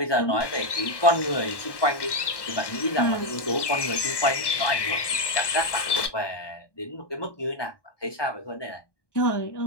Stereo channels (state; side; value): late; right; 1.2 ms